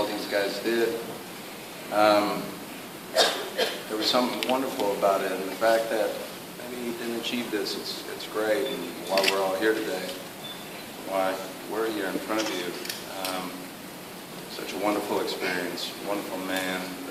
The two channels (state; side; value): identical; both; correlation 1.00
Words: these guys did, there was something wonderful about it. And the fact that maybe he didn't achieve this, it's great. And while we're all here today, why we're here in front of you, such a wonderful experience, wonderful man.